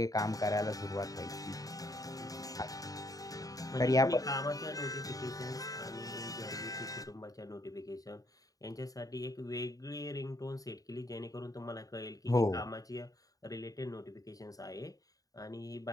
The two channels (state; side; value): late; right; 0.17 ms